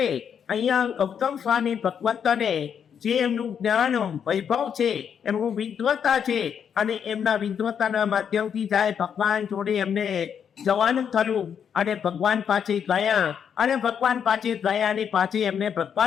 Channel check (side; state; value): right; quieter; 7.8 dB